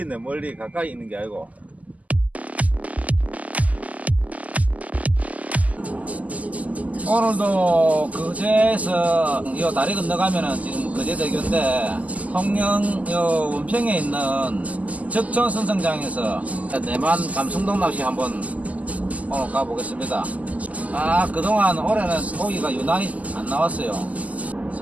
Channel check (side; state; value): left; late; 0.074 ms